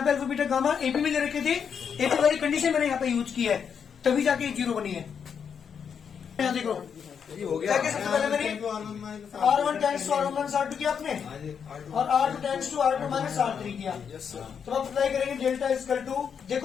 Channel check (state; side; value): quieter; right; 7.1 dB